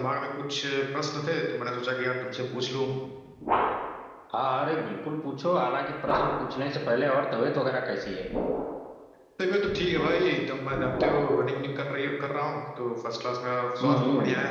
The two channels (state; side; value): identical; both; correlation 1.00